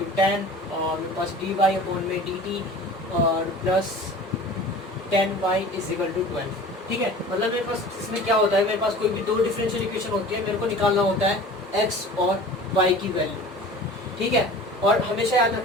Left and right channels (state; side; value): normal; both; correlation 0.41